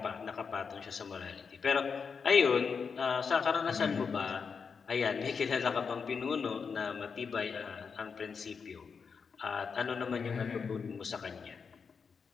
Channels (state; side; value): quieter; right; 5.7 dB